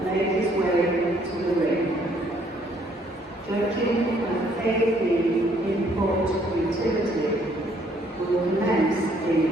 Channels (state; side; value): normal; both; correlation 0.65